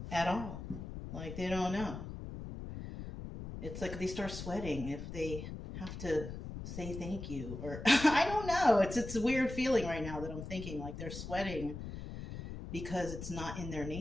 at all. Like, they don't know. It's like they start sweating if they have to say thank you, or I don't know. It's a weird feeling right now that I'm thinking like they're sweating because it's not in their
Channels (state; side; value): noise; left; rumble, 8 dB below the sound